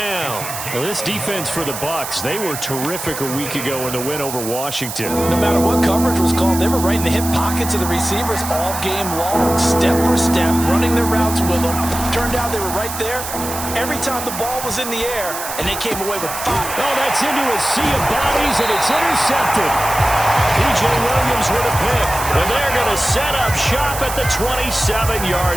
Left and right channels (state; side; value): noise; right; hiss, 7 dB below the sound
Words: Well, this defense for the Bucs, they were terrific a week ago in the win over Washington. No matter what coverage was called, they were right in the hip pockets of the receivers all game long, step for step, running their routes with them. Turned out they were right there every time the ball was in the air, and they came away with 5. Oh, that's into a sea of bodies, and it's intercepted. P.J. Williams with a pick, and they're going to set up shop at the